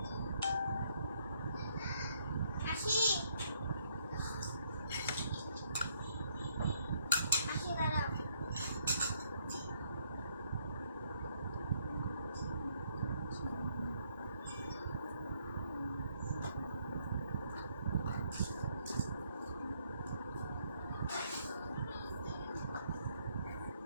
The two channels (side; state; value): both; inverted; correlation -0.70